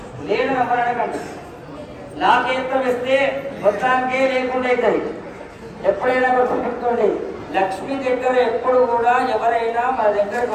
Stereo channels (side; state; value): both; identical; correlation 1.00